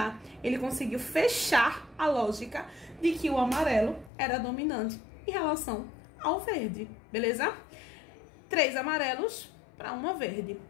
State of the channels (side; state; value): right; drops out; at 4.1 s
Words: ele conseguiu fechar a lógica de que o amarelo era dominante em relação ao verde, beleza? 3 amarelos para uma verde.